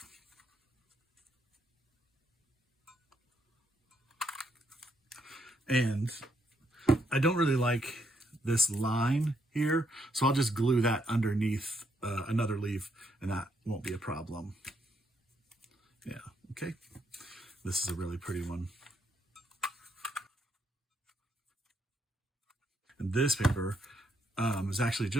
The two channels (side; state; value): both; normal; correlation 0.75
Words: And I don't really like this line here, so I'll just glue that underneath another leaf, and that won't be a problem. Yeah, okay. This is a really pretty one. And this paper is actually